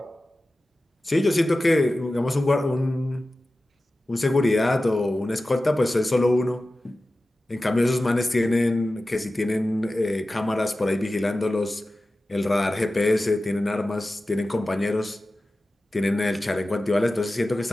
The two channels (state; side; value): normal; both; correlation 0.95